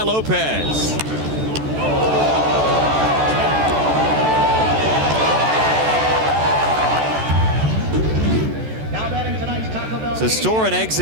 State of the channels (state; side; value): late; left; 14 ms